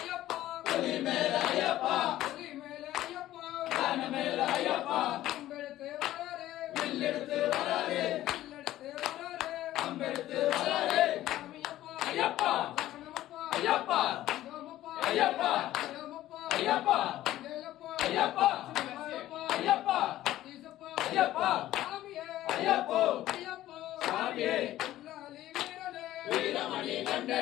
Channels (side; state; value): right; quieter; 14.3 dB